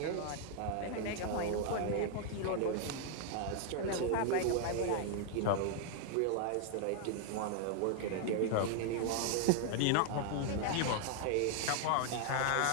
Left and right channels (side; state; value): both; different; correlation 0.00